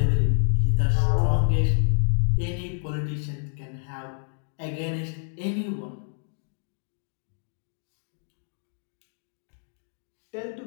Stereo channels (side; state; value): right; silent; digital silence